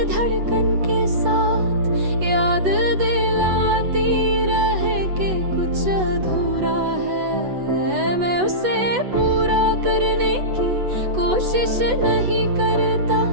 धड़कन के साथ याद दिलाती रहे कि कुछ अधूरा है। मैं उसे पूरा करने की कोशिश नहीं करता,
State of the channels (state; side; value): late; left; 8.1 ms